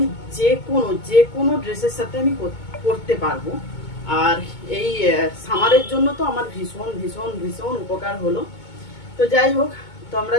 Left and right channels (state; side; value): late; right; 2.2 ms